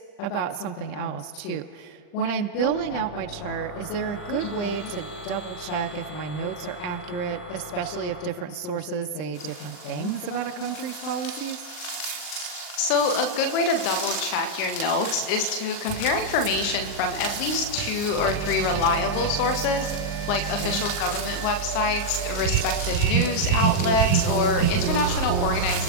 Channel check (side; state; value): right; late; 39 ms